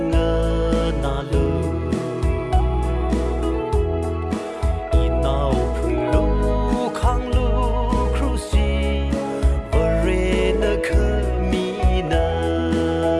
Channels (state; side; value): identical; both; correlation 1.00